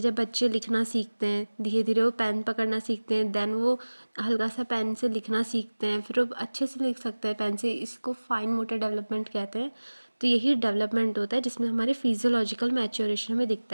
जब बच्चे लिखना सीखते हैं, धीरे धीरे वो पेन पकड़ना सीखते हैं, देन वो हल्का सा पेन से लिखना सीखते हैं, फिर वो अच्छे से लिख सकते हैं पेन से। इसको फाइन मोटर डेवलपमेंट कहते हैं। तो यही डेवलपमेंट होता है जिसमें हमारे फिजियोलॉजिकल मैच्योरेशन में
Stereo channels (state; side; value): inverted; both; correlation -1.00